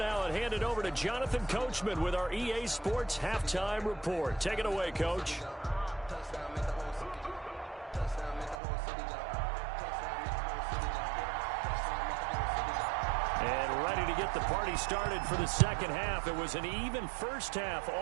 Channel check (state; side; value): drops out; left; at 8.6 s